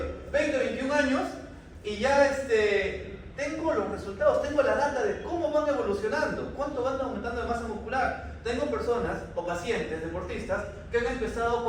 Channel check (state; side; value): identical; both; correlation 1.00